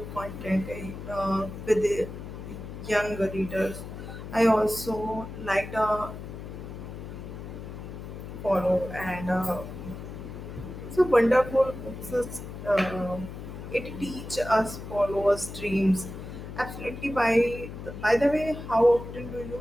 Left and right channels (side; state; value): left; noise; hum, 10 dB below the sound